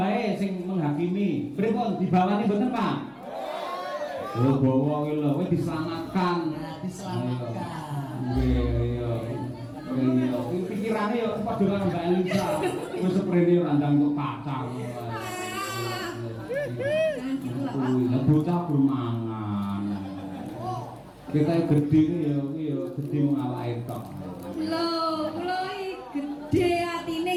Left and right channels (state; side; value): identical; both; correlation 1.00